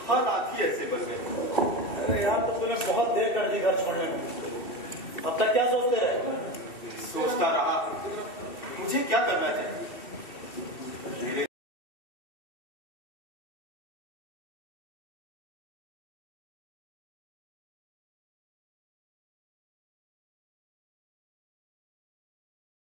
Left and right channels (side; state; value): right; late; 2.7 ms